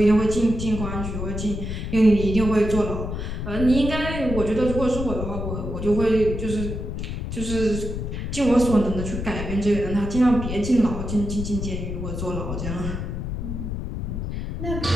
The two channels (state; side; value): noise; left; rumble, 5 dB below the sound